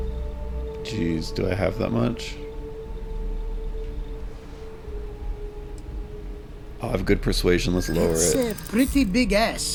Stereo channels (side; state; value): both; identical; correlation 1.00